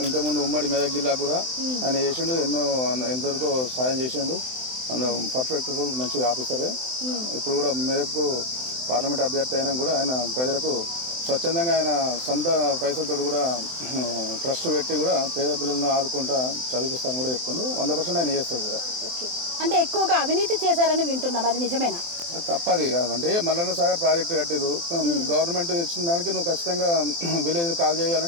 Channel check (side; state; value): left; late; 23 ms